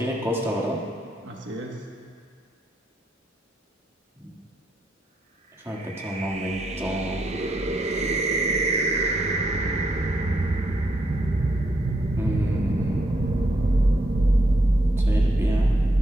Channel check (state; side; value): normal; both; correlation 0.78